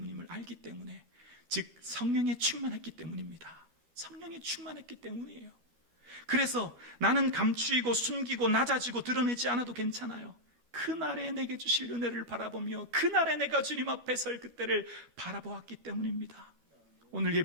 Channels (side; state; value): left; late; 12 ms